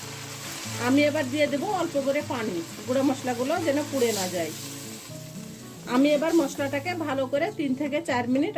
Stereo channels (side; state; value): both; identical; correlation 1.00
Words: এবার দিয়ে দেবো অল্প করে পানি, গুঁড়া মশলাগুলো যেন পুড়ে না যায়। এবার মশলাটাকে ভালো করে 3 থেকে 4 মিনিট